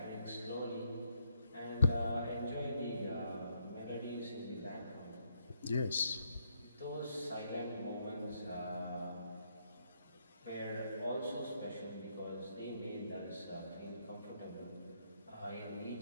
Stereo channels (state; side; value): inverted; both; correlation -0.75